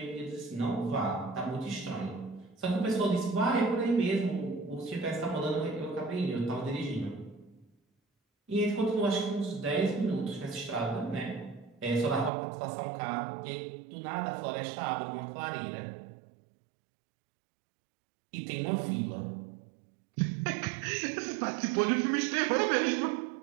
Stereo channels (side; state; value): left; drops out; at 12.3 s